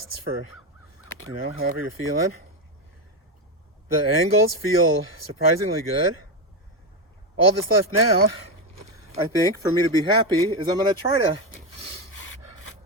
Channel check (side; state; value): both; normal; correlation 0.10